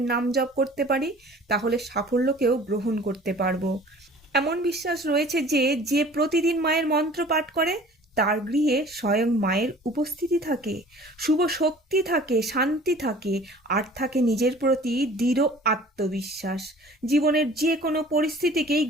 নাম জপ করতে পারি, তাহলে সাফল্যকেও গ্রহণ করতে পারবো। এমন বিশ্বাস রয়েছে যে যে প্রতিদিন মায়ের মন্ত্র পাঠ করে তার গৃহে স্বয়ং মায়ের উপস্থিতি থাকে, শুভ শক্তি থাকে, শান্তি থাকে, আর থাকে নিজের প্রতি দৃঢ় আত্মবিশ্বাস। জীবনের যে কোনো পরিস্থিতিকেই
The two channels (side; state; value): both; normal; correlation 0.47